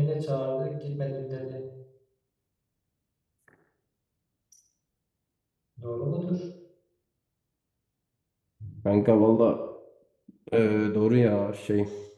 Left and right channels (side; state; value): both; identical; correlation 1.00